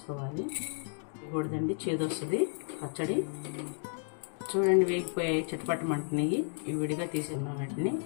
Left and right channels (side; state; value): right; silent; 56 dB below the other